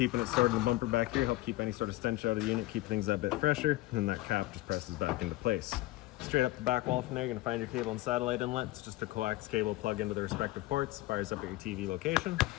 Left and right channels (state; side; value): quieter; right; 18.3 dB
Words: it started in the bumper back here, help keep any sort of stench out of the unit, keep things that bit fresher, and that cap just presses back into place. Straight up the back wall from there, you're going to find your cable and satellite inlet. It's just a coax cable plug into the respective ports, fires up at your TV location.